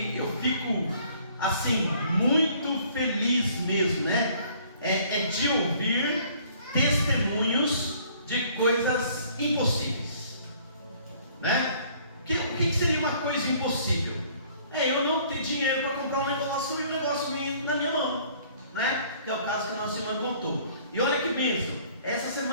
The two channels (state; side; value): inverted; both; correlation -0.57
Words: eu fico assim, muito feliz mesmo, né? É de ouvir testemunhos de coisas impossíveis, né? O que seria uma coisa impossível? Eu não ter dinheiro para comprar um negócio e o negócio vir na minha mão, né? Que é o caso que a nossa irmã contou. E olha que bênção, essa